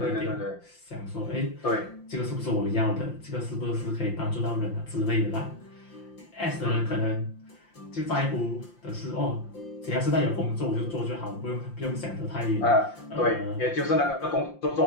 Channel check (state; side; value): late; right; 5.8 ms